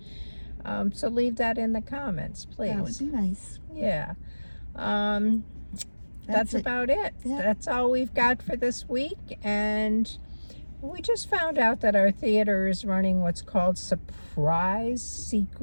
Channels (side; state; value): both; inverted; correlation -1.00